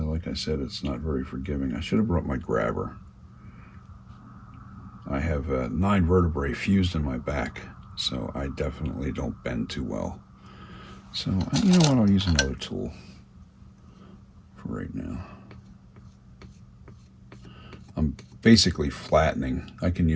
like I said, it's not very forgiving. I should have brought my grabber. I have 9 vertebrae fused in my back, so I definitely don't bend too well. So, you know what, I'll use another tool for right now. I'm basically flattening. I can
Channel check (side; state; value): both; identical; correlation 1.00